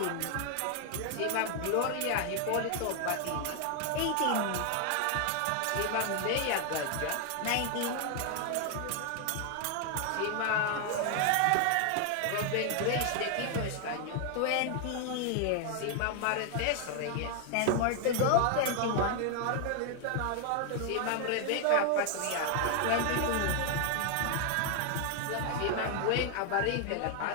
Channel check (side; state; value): both; different; correlation 0.00